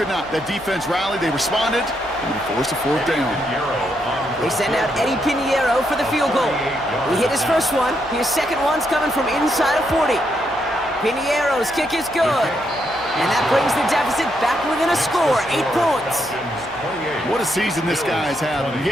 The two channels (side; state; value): right; noise; hum, 22 dB below the sound